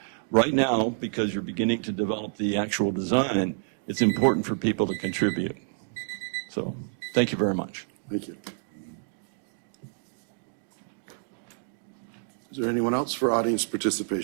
right now, because you're beginning to develop the actual design, it's important for people to contribute. So thank you very much. Thank you. Is there anyone else for audience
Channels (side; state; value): left; silent; digital silence